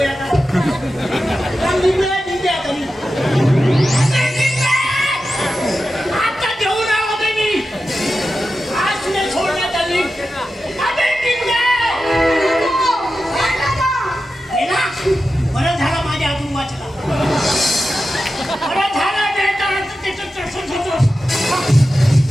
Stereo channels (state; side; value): normal; both; correlation 0.92